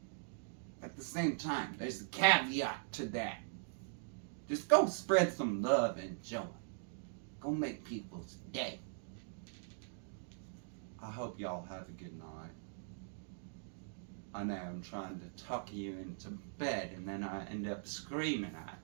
At the same time, there's a caveat to that. Just go spread some love and joy. Go make people's day. I hope y'all have a good night. I know I'm trying to tuck you into bed and then I end up screaming at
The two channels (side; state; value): left; silent; digital silence